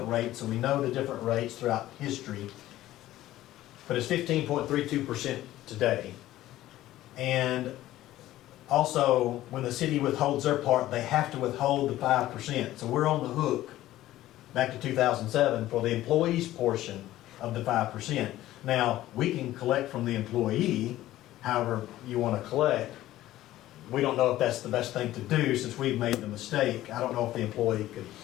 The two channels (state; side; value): quieter; right; 14.8 dB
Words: rates, and we know the different rates throughout history. But it's 15.32% today. And also, when the city withholds their part, they have to withhold the 5%. So we're on the hook, back to 2007, for the employee's portion of the 5%. Now, we can collect from the employee, however you want to collect. We don't know if that's the best thing to do since we've made the mistake. I don't know if the employee could,